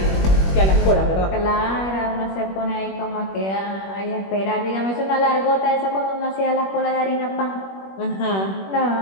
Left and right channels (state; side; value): late; right; 21 ms